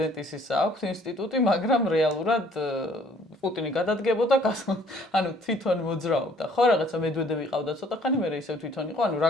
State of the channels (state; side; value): normal; both; correlation 0.59